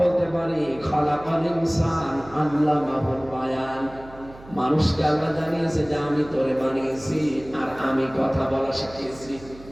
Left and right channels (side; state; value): right; noise; hum, 20 dB below the sound